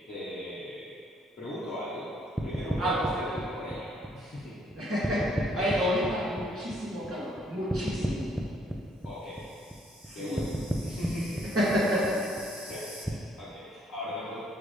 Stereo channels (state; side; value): normal; both; correlation 0.67